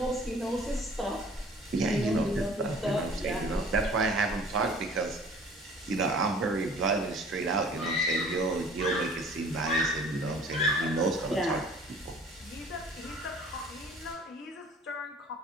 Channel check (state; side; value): normal; both; correlation 0.50